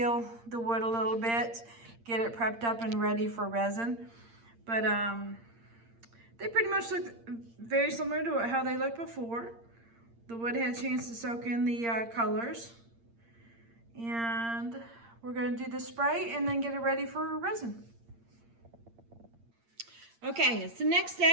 the wood a little bit, get it prepped up and ready for resin. But they pretty much look very similar to how they looked before. The wood had a chance to soak in the colors. And we're going to do the spray and then get it ready for resin. Okay, it's the next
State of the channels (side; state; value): left; late; 8.7 ms